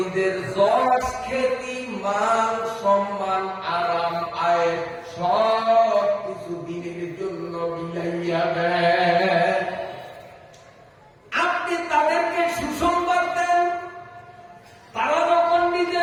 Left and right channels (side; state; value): both; identical; correlation 1.00